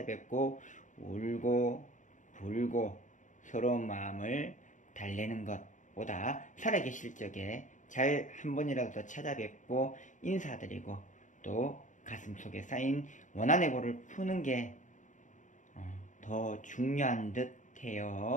울고 불고 서러운 마음을 달래는 것보다 살아계실 적에 잘 한 번이라도 더 찾아뵙고 인사드리고 또 가슴속에 쌓인 원한의 골을 푸는 게 더 중요한 듯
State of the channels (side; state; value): right; late; 0.36 ms